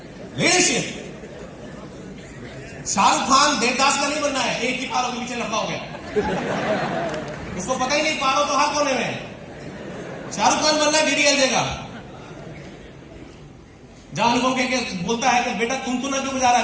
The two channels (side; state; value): both; identical; correlation 1.00